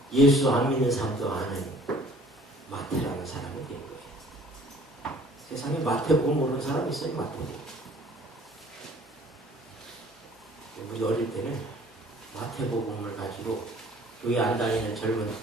예수 안 믿는 사람도 아는 마태라는 사람이 된 거예요. 세상에 마태복음 모르는 사람 있어요? 마태복음. 우리 어릴 때는 마태복음을 가지고 교회 안 다니는 젊은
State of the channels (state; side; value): normal; both; correlation 0.53